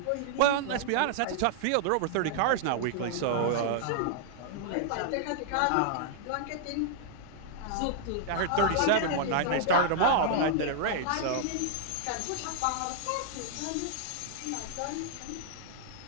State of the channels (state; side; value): different; both; correlation -0.01